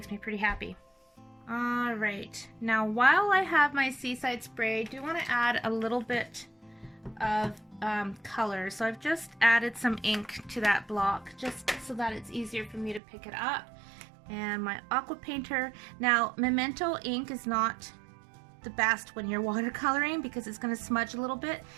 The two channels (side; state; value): left; drops out; at 13.0 s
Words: me pretty happy. All right, now while I have my Seaside Spray, I do want to add a little bit of color. So I've just added some ink to that block just so that it's easier for me to pick it up. And my aqua painter. Now, memento ink is not the best when you're watercoloring because it's going to smudge a little bit.